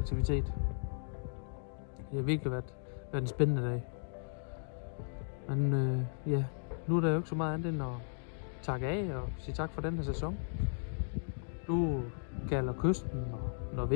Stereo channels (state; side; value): silent; right; digital silence